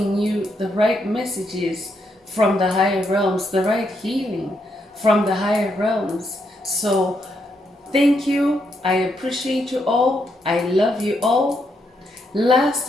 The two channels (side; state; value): both; normal; correlation 0.78